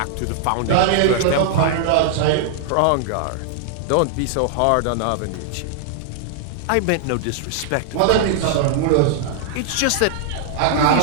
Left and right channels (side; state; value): both; different; correlation -0.01